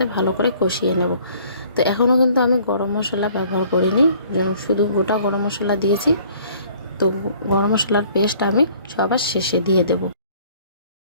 ভালো করে কষিয়ে নেব। তো এখনও কিন্তু আমি গরম মশলা ব্যবহার করিনি, শুধু গোটা গরম মশলা দিয়েছি। তো গরম মশলার পেস্ট আমি সবার শেষে দিয়ে দেব।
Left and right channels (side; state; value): both; inverted; correlation -0.56